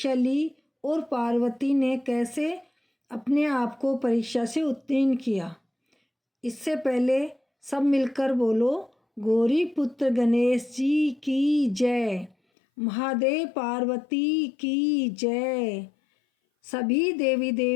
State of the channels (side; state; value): right; drops out; at 12.4 s